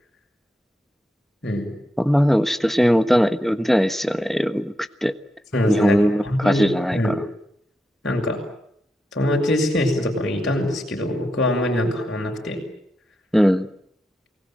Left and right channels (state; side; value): normal; both; correlation 0.86